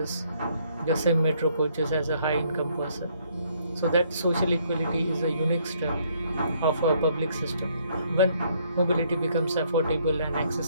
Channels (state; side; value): inverted; both; correlation -0.67